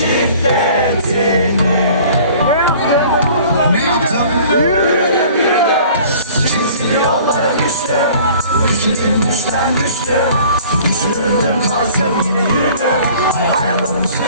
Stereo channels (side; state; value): both; inverted; correlation -0.49